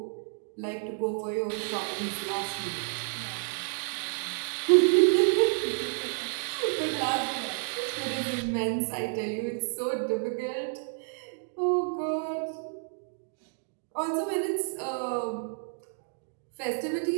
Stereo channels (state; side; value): silent; left; digital silence